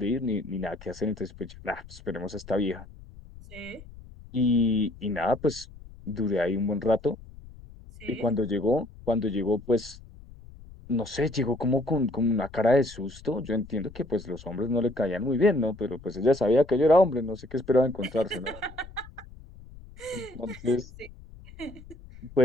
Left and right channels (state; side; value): noise; left; rumble, 18 dB below the sound